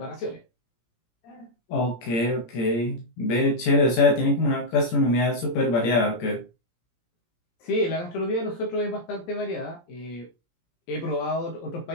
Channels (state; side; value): late; right; 17 ms